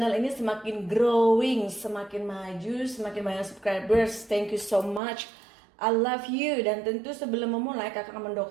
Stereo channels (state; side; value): drops out; left; at 5.0 s